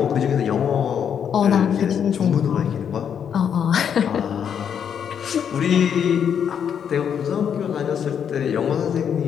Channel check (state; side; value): quieter; right; 8.1 dB